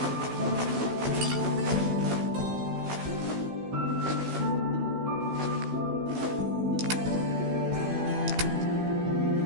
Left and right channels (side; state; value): left; late; 16 ms